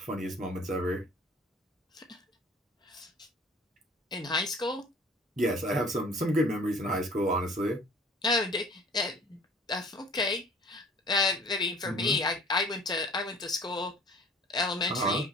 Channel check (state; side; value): normal; both; correlation 0.49